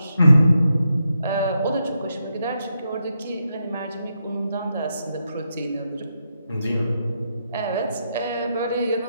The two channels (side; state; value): both; inverted; correlation -0.83